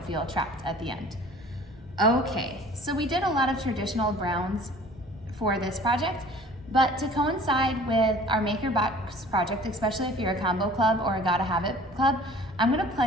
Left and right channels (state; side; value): normal; both; correlation 0.48